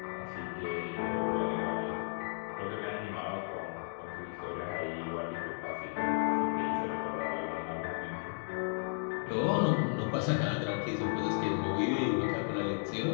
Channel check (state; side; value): silent; right; 55 dB below the other